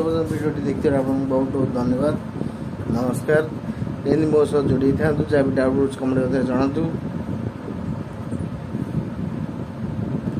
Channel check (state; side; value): identical; both; correlation 1.00